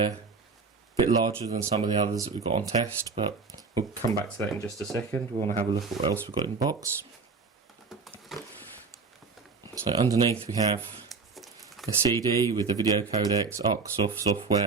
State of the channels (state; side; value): quieter; left; 4.5 dB